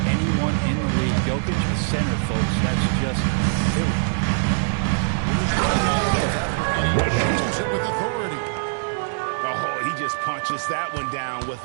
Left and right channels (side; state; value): left; silent; 64 dB below the other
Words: anyone in the league. Jokic, a center, folks. That's just silly. And he shoots it with authority. Oh, he just punches that one down with